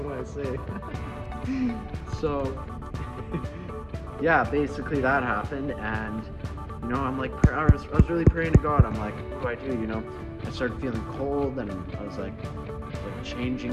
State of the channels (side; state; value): both; identical; correlation 1.00